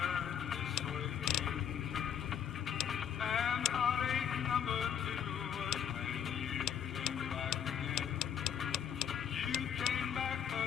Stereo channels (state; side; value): quieter; right; 8.8 dB